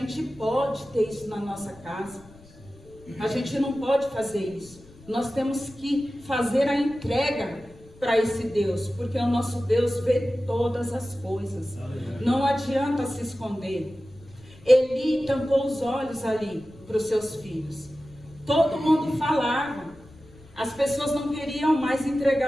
pode ter isso na nossa casa. A gente não pode fazer isso. Nós temos que fazer a entrega para esse Deus, porque o nosso Deus vê todas as coisas. Não adianta se esconder. Eli tampou os olhos ali para os seus filhos. Todo mundo falava. As pessoas não queriam mais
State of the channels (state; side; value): noise; left; rumble, 23 dB below the sound